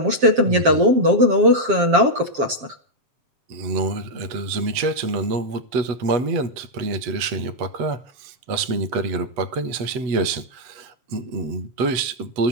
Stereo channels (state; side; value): late; left; 8.1 ms